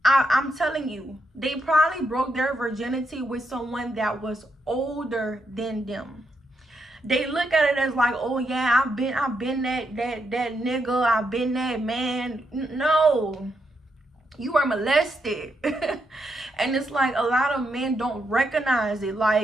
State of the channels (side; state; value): both; normal; correlation 0.81